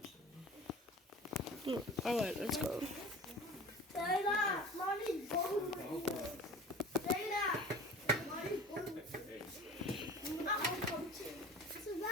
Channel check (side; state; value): both; normal; correlation 0.40